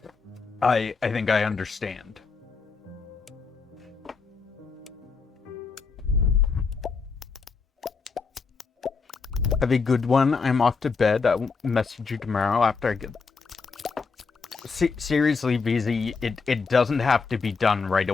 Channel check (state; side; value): quieter; right; 4.8 dB